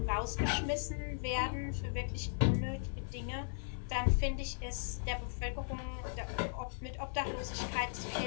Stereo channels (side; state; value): right; silent; 53 dB below the other